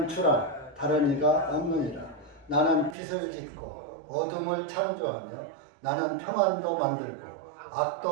주라 다른 이가 없느니라. 나는 빛을 짓고 어둠을 창조하며 나는 평안도 만들고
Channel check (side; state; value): left; drops out; at 3.0 s